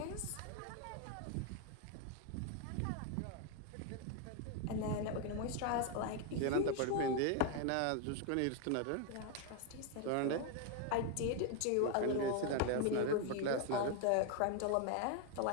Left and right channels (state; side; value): different; both; correlation 0.01